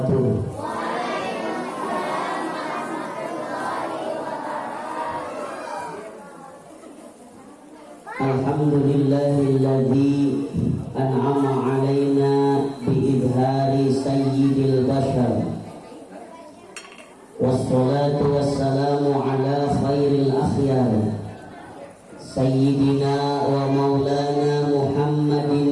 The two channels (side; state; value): both; identical; correlation 1.00